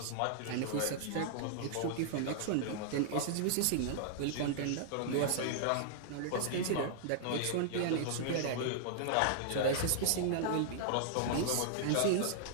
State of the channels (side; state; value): both; different; correlation -0.01